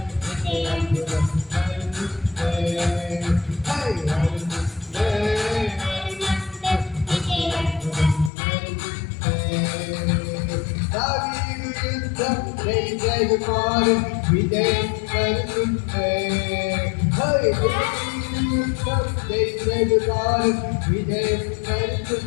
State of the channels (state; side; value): drops out; right; at 8.3 s